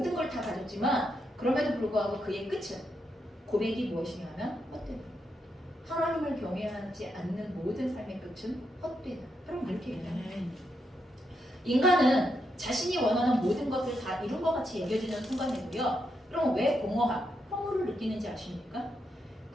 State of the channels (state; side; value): normal; both; correlation 0.82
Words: 걸 다 가졌지만 그럼에도 불구하고 그의 끝은 고백이 무엇이냐면 헛되다. 하나님을 경외하지 않는 모든 삶의 끝은 헛되다. 여러분 이렇게 얘기해요. 인간은 자신이 원하는 모든 것을 다 이룬 것 같이 여겨지는 순간에도요. 그럼 왜 공허함, 허무를 느끼는지 아십니까?